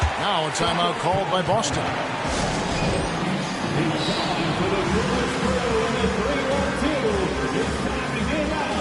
Now a timeout called by Boston.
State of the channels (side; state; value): both; identical; correlation 1.00